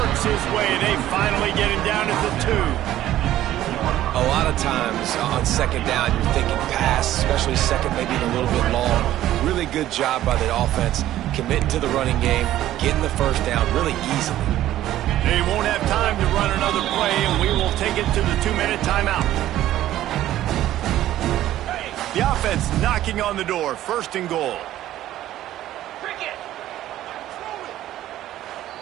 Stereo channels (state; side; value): quieter; left; 13.5 dB